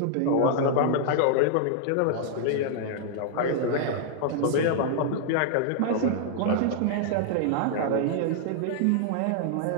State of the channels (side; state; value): both; different; correlation -0.01